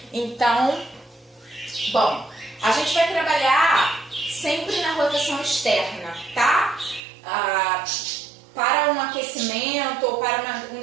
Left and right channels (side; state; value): left; drops out; at 7.0 s